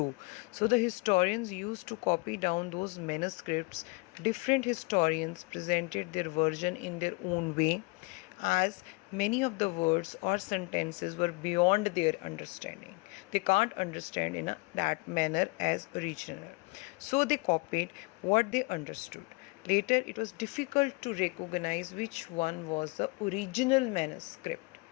So the historians used to copy down those manuscripts. Different historians presented their version in their own way, as many of the words or sentences were beyond their understanding. They can't understand in that manner as original. So they copied what they understood. Later, it was difficult to recognize which one was the original manuscript.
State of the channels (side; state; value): right; quieter; 28.0 dB